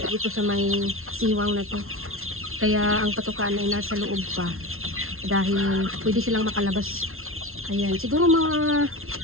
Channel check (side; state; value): left; late; 0.62 ms